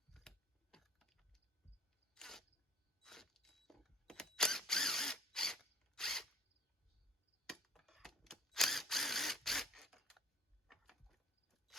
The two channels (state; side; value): normal; both; correlation 0.52